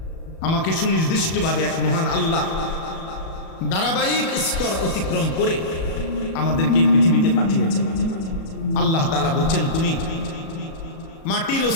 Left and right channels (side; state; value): right; late; 37 ms